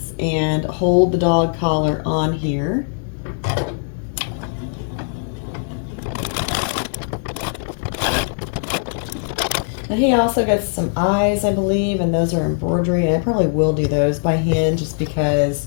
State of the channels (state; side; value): silent; right; 66 dB below the other